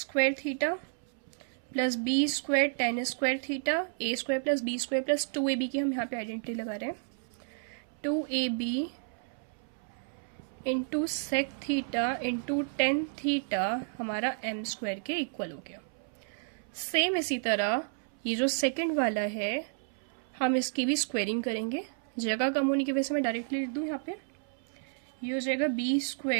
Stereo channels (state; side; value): silent; left; 57 dB below the other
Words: theta plus b square tan square theta, a square plus b square plus 2ab की हम यहाँ पे आइडेंटिटी लगा रहे हैं, 2ab into sec theta into tan theta हमारा m स्क्वायर के इक्वल हो गया। सेम इसी तरह ये जो सेकंड वाला है हम इसकी भी स्क्वायरिंग करेंगे, जगह कम होने की वजह से मैं डायरेक्टली लिख दूँ यहाँ पे, ये हो जाएगा B